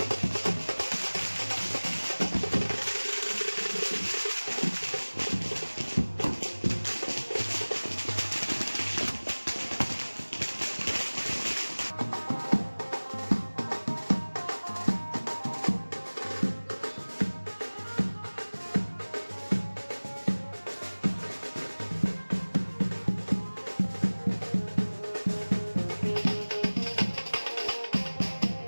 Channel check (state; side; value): inverted; both; correlation -1.00